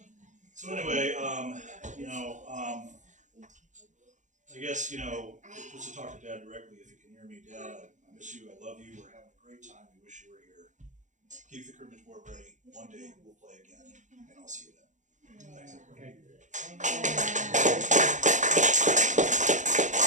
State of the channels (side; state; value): left; late; 0.36 ms